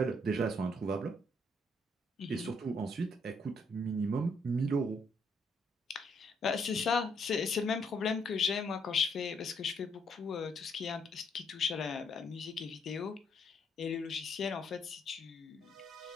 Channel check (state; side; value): normal; both; correlation 0.71